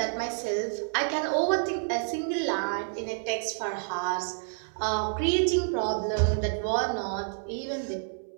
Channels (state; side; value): silent; left; 59 dB below the other